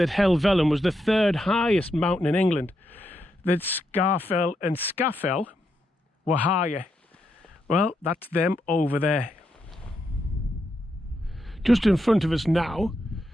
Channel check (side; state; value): both; normal; correlation 0.82